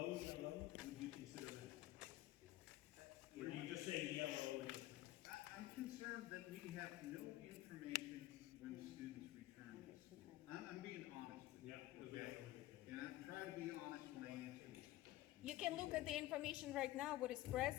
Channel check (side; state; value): right; quieter; 16.0 dB